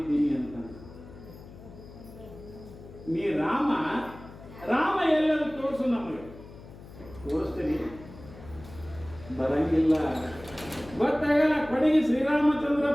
ಅಂತ. ನೀ ರಾಮ ಎಲ್ಲರೂ ತೋರಿಸು, ನಮಗೆ ತೋರಿಸ್ತೀನಿ. ಬರಂಗಿಲ್ಲ, ಗೊತ್ತಾಗಲ್ಲ. ಕಡೆಗೆ ಶ್ರೀರಾಮಚಂದ್ರ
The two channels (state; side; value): noise; left; hum, 17 dB below the sound